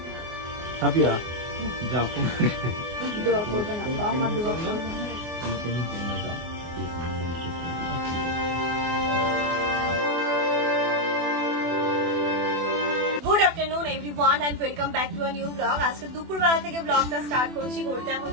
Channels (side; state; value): left; late; 24 ms